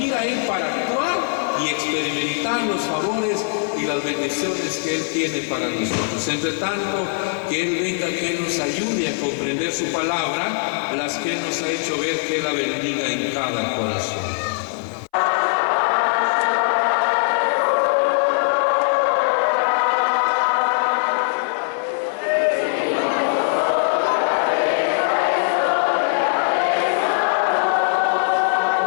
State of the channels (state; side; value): silent; right; 60 dB below the other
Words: Él, para actuar y experimentar los favores y las bendiciones que Él tiene para nosotros. Entre tanto, que Él venga, que Él nos ayude a comprender su palabra, las que Él nos ha hecho ver, que Él la bendiga en cada corazón.